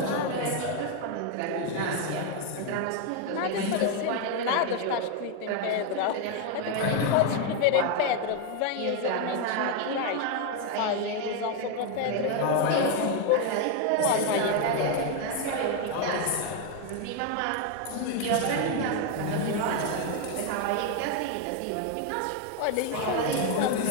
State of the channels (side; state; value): both; different; correlation 0.01